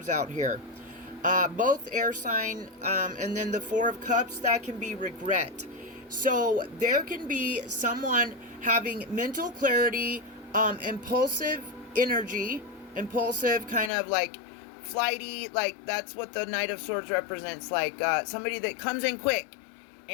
out here. Both air sign, and then the Four of Cups, that can be regret. So there can be someone having mental clarity, impulsive energy, impulsive, kind of like flighty, like that's what the Knight of Swords represents, like somebody that comes in quick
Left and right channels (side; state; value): right; drops out; at 13.9 s